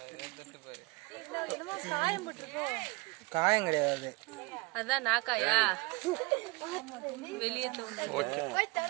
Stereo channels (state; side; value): quieter; left; 26.2 dB